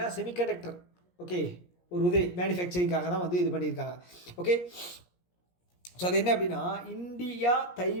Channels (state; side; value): late; right; 17 ms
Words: செமிகண்டக்டர். ஓகே, ஒரு மேனுஃபேக்சரிங்காக தான் வந்து இது பண்ணியிருக்காங்க. ஓகே, ஸோ அது என்ன அப்படின்னா India